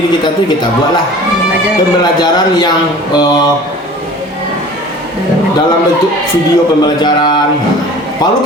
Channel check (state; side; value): normal; both; correlation 0.43